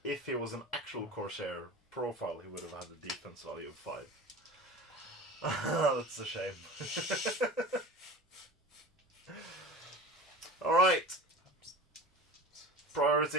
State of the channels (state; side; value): normal; both; correlation 0.35